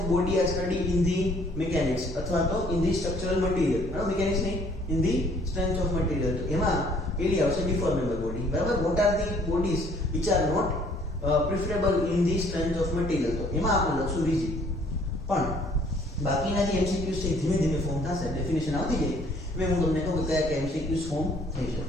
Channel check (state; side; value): normal; both; correlation 0.60